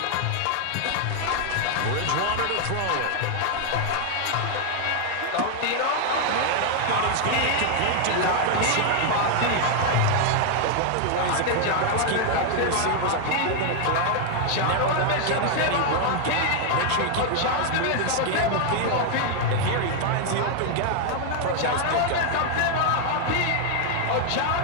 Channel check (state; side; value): different; both; correlation 0.00